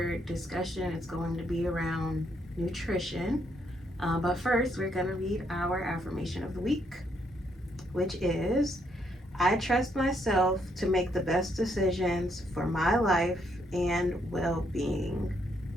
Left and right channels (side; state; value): both; normal; correlation 0.74